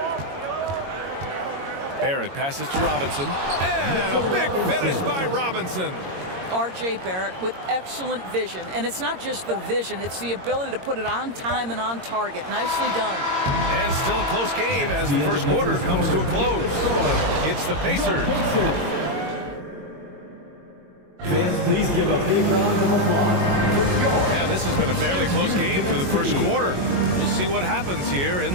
Barrett passes to Robinson. And a big finish by Robinson. R.J. Barrett with excellent vision. And it's not just the vision, it's the ability to put it on time and on target. Nicely done. And still a close game as the first quarter comes to a close. It's the Pacers. Fans, please give a big round of applause. And this has been a fairly close game through the first quarter. We'll see what happens here in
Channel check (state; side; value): late; left; 22 ms